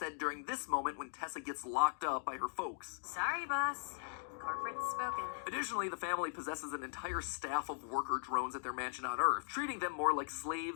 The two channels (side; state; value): right; silent; digital silence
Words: during this moment when Tessa gets locked up by her folks. Sorry, boss. Corporate's spoken. Additionally, the family possesses an entire staff of worker drones at their mansion on Earth, treating them more like